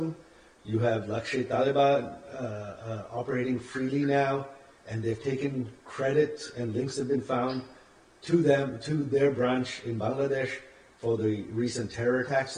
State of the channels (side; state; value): both; identical; correlation 1.00